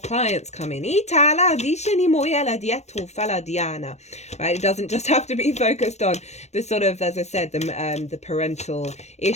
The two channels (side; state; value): right; late; 0.32 ms